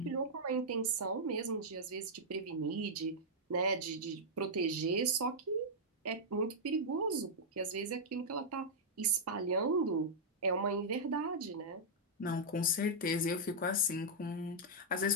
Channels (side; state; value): both; normal; correlation -0.08